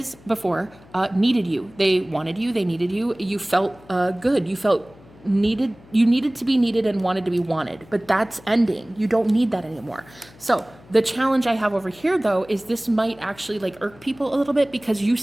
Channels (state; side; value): noise; left; hum, 24 dB below the sound